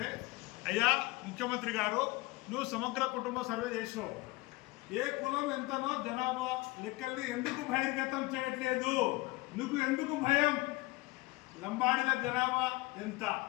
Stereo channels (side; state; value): right; quieter; 22.2 dB